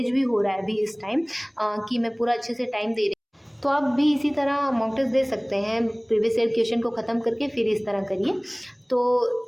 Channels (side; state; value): both; identical; correlation 1.00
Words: भी हो रहा है अभी इस टाइम, कि मैं पूरा अच्छे से टाइम दे रही हूँ। तो आप भी इसी तरह मॉक टेस्ट दे सकते हैं, प्रीवियस ईयर क्वेश्चन को ख़त्म करके फिर इस तरह करिए। तो